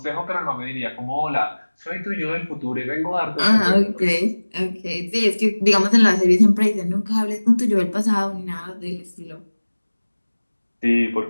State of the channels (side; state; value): both; inverted; correlation -1.00